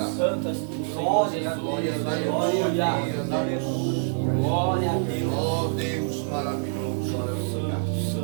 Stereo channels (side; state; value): left; silent; digital silence